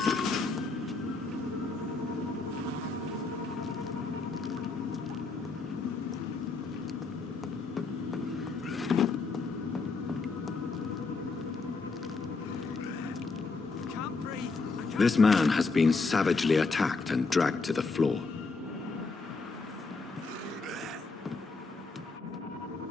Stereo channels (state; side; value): quieter; right; 4.1 dB